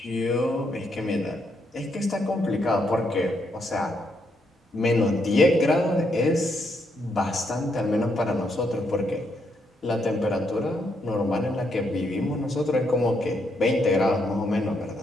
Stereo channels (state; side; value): normal; both; correlation 0.77